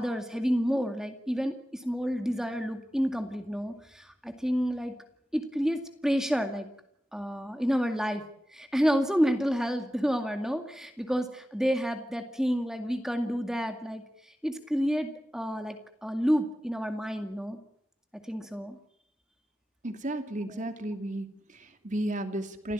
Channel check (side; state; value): both; normal; correlation 0.93